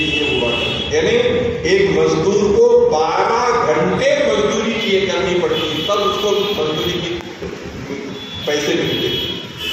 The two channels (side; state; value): both; identical; correlation 1.00